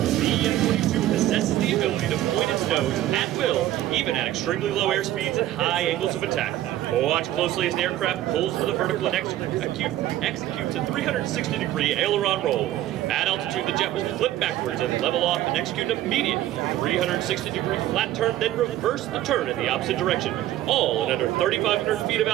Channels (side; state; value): left; quieter; 13.7 dB